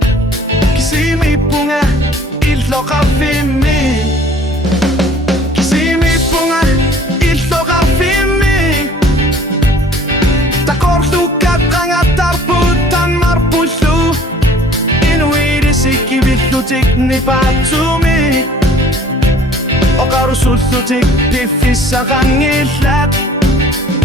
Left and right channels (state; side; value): normal; both; correlation 0.52